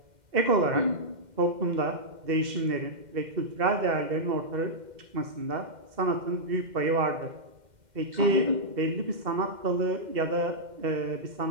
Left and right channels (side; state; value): left; late; 2.1 ms